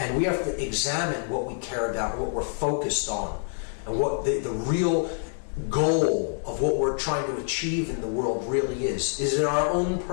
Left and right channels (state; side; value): silent; right; 60 dB below the other